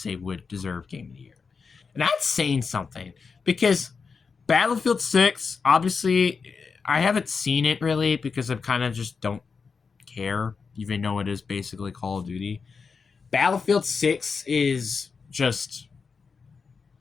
would deserve Game of the Year. And that's saying something, because Battlefield 6, obviously, I haven't seen it really because I kind of just don't care, even though it is basically Call of Duty. Battlefield 6 is just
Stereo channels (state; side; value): quieter; right; 5.2 dB